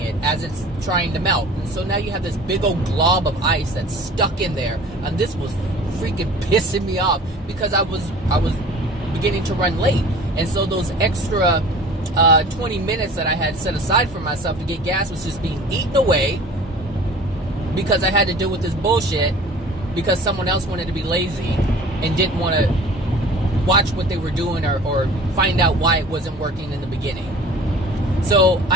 as it's trying to melt. And so now you have this big old glob of ice that's stuck in there, and this was freaking pissing me off because I was beginning to run late. And so those extra 20 minutes that I had set aside for myself to get gas was just being eaten away because I had to deal with this bullshit because someone else wanted to be lazy and didn't want to watch what they were doing or find out why it wasn't working in the beginning. So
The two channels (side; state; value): both; normal; correlation 0.44